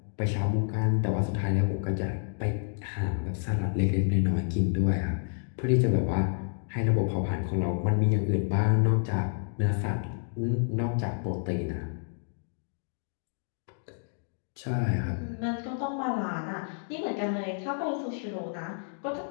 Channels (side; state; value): right; silent; digital silence